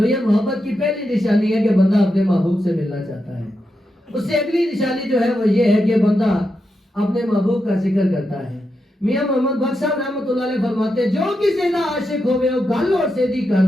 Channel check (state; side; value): normal; both; correlation 0.86